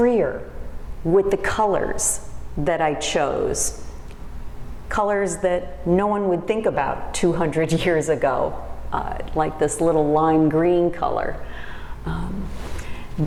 with the colors that I chose. Colors that no one would think about 200 years ago, like this little lime green color.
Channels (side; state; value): both; identical; correlation 1.00